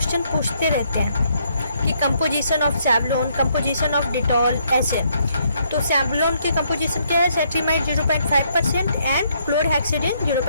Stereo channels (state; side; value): inverted; both; correlation -0.71